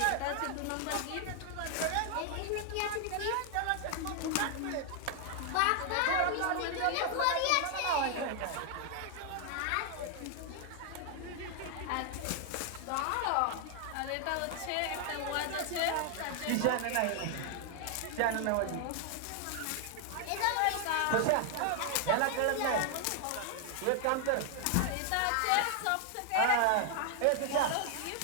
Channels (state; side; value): different; both; correlation 0.00